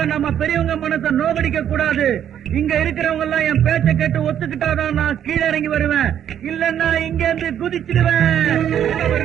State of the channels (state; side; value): quieter; left; 9.8 dB